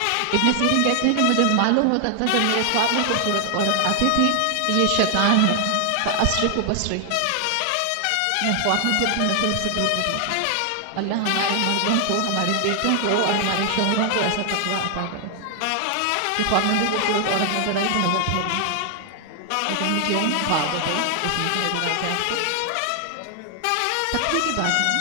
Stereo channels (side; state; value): both; different; correlation 0.00